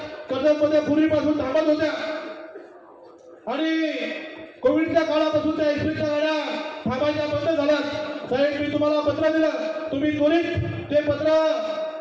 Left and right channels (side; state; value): both; identical; correlation 1.00